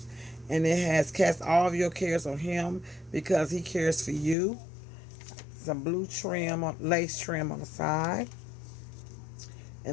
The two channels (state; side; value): drops out; right; at 4.4 s